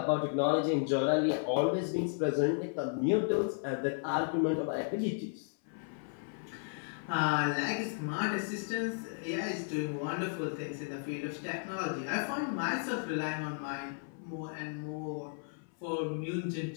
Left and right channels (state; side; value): silent; right; 55 dB below the other